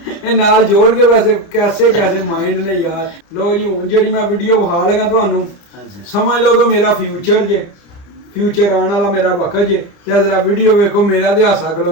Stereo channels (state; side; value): late; right; 30 ms